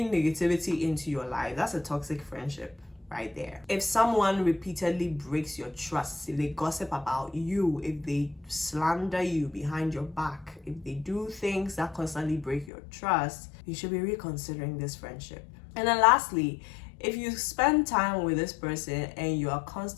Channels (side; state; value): right; drops out; at 12.7 s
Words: negativity into your life. That's a toxic friendship right there. If someone repeatedly breaks your trust, if they gossip about you, if they slander you behind your back, if they do things that constantly break your trust, you should be reconsidering this friendship. And then lastly, if you spend time with this person and you are